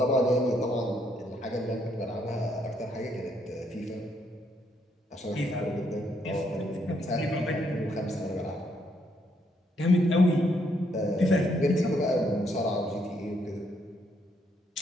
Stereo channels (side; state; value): both; normal; correlation 0.73